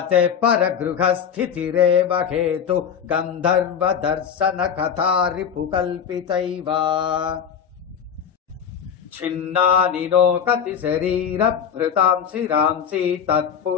परगृहस्थितिरेव हेतु गन्धर्वदर्शन कथा रिपुकल्पितैव छिन्नानि नो कति शरीरभृतां शिरांसि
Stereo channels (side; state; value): right; quieter; 7.7 dB